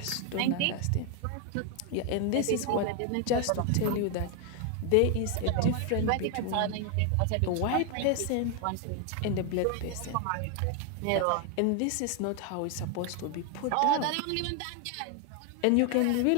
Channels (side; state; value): both; different; correlation 0.01